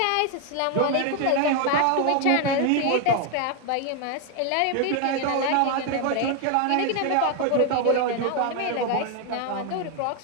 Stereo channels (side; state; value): both; different; correlation 0.01